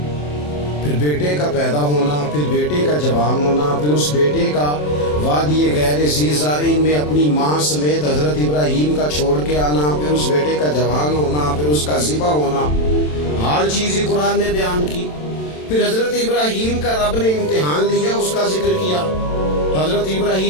پھر بیٹے کا پیدا ہونا، پھر بیٹے کا جوان ہونا، پھر اس بیٹے کا وادی غیر ذی زارعین میں اپنی ماں سمیت حضرت ابراہیم کا چھوڑ کے آنا، پھر اس بیٹے کا جوان ہونا، پھر اس کا ذبح ہونا، ہر چیز ہی قرآن نے بیان کی۔ پھر حضرت ابراہیم کا رب نے امتحان لیا، اس کا ذکر کیا۔ حضرت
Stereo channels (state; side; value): late; right; 27 ms